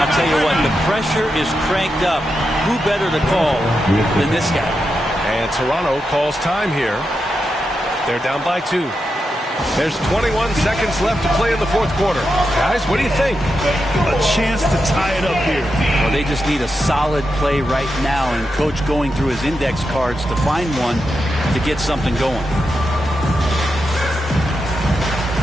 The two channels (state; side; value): normal; both; correlation 0.87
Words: tell you what, the pressure is cranked up. Who better to call than this guy? And Toronto calls time here. They're down by 2. There's 21 seconds left to play in the fourth quarter. Guys, what do you think? A chance to tie it up here. Well, they just need a solid play right now, and Coach going through his index cards to find one to get something going.